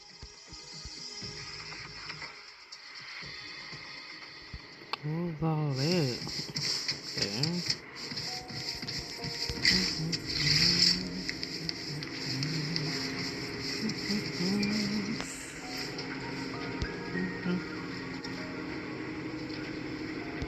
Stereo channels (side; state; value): both; identical; correlation 1.00